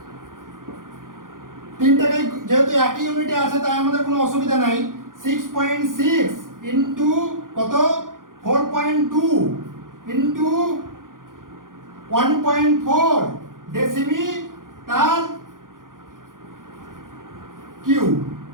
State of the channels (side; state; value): left; late; 0.90 ms